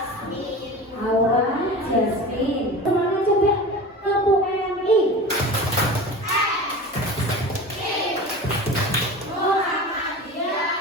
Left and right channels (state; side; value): normal; both; correlation 0.33